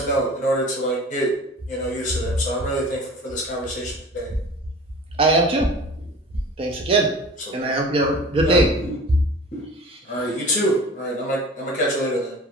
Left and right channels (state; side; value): normal; both; correlation 0.41